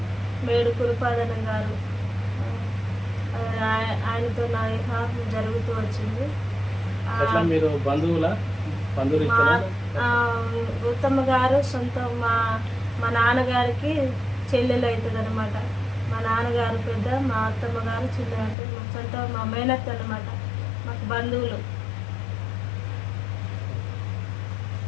మేడు కురుపాదనం గారు. ఆయనతో నా వివాహం జరుగుతూ వచ్చింది. మీరు బంధువులు రుత్తమ్మ గారు సొంత మా నాన్నగారికి చెల్లెలు అవుతుంది అనమాట. మా నాన్నగారు పెద్ద, మా అత్తమ్మ గారు చిన్న, అంటే మా సొంత మా మేనత్త అనమాట. మాకు బంధువులు.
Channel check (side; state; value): right; drops out; at 18.6 s